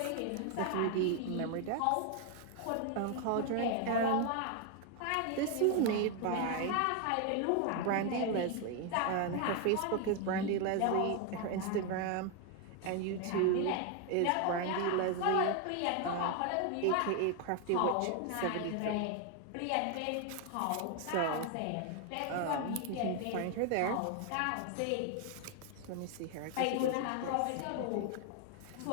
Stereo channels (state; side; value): different; both; correlation 0.01